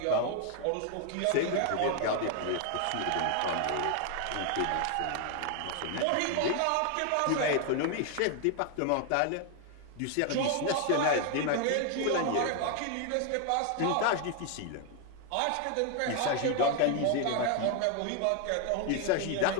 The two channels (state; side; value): different; both; correlation 0.00